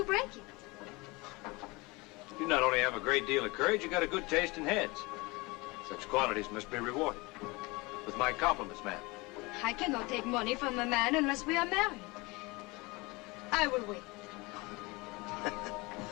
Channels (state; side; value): quieter; right; 24.7 dB